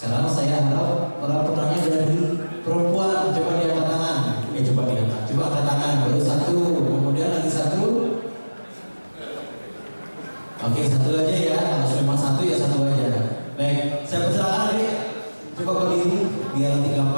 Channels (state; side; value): inverted; both; correlation -1.00